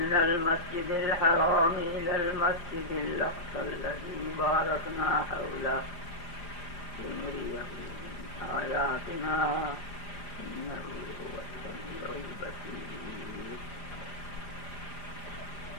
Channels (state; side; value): late; right; 4.9 ms